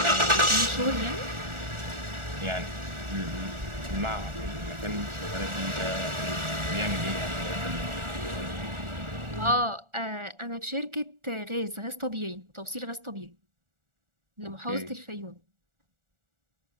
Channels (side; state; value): left; late; 1.4 ms